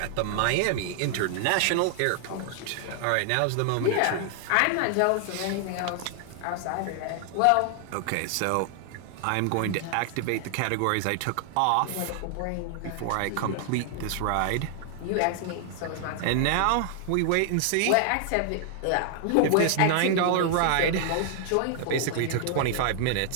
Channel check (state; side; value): different; both; correlation 0.00